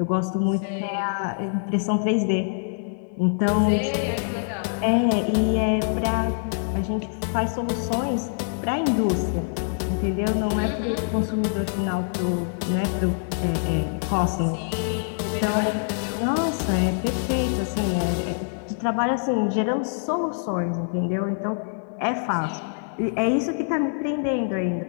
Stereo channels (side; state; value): right; silent; digital silence